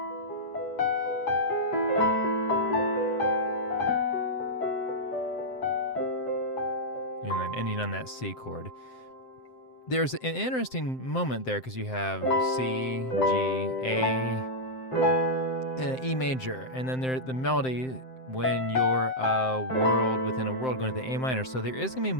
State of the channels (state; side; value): late; right; 7.7 ms